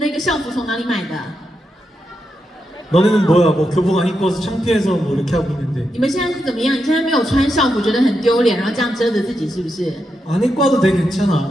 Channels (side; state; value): both; normal; correlation 0.85